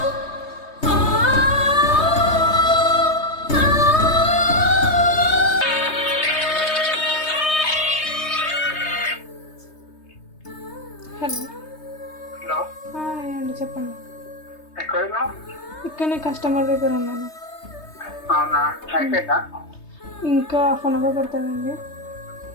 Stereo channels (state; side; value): late; right; 3.2 ms